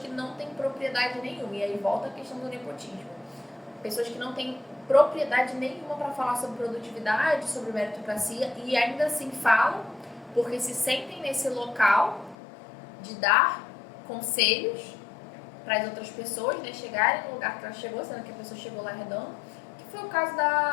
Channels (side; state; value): right; drops out; at 12.4 s